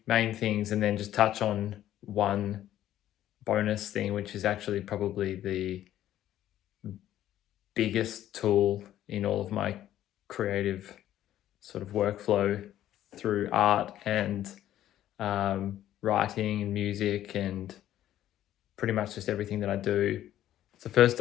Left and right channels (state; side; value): quieter; right; 12.5 dB